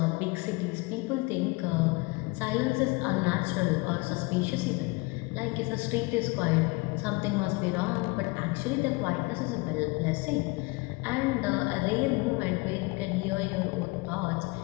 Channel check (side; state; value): right; quieter; 25.4 dB